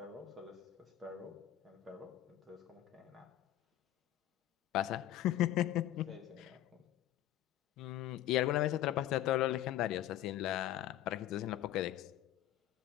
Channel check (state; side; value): quieter; right; 13.0 dB